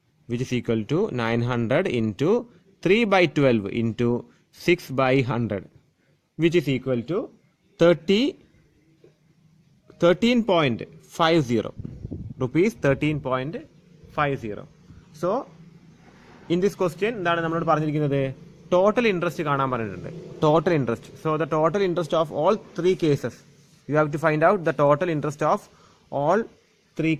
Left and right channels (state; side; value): identical; both; correlation 1.00